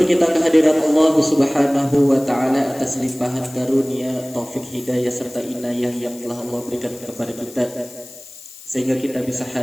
kita kehadirat Allah Subhanahu wa taala atas limpahan karunia, taufik, hidayah serta inayah yang telah Allah berikan kepada kita, sehingga kita bisa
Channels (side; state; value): left; noise; hiss, 18 dB below the sound